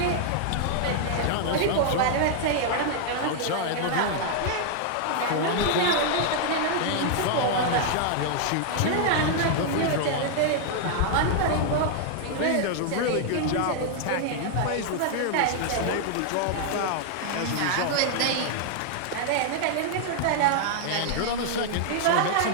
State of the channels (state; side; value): different; both; correlation 0.00